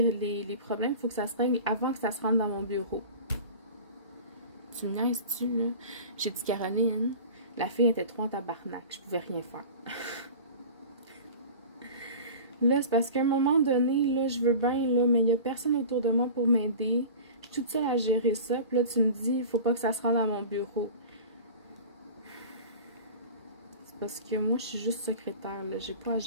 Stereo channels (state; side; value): inverted; both; correlation -0.36